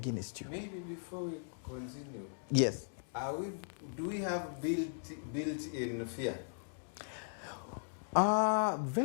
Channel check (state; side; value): silent; right; digital silence